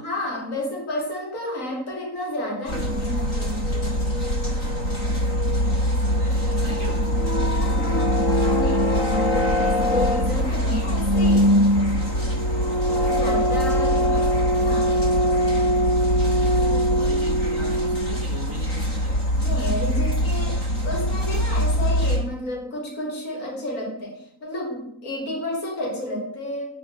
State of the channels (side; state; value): right; late; 3.9 ms